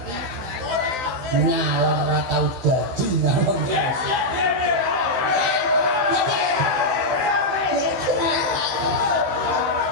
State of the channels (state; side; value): late; left; 16 ms